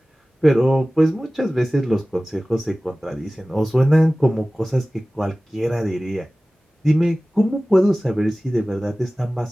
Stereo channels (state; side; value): normal; both; correlation 0.97